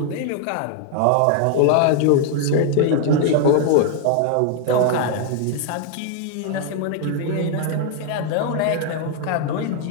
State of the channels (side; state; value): both; different; correlation 0.00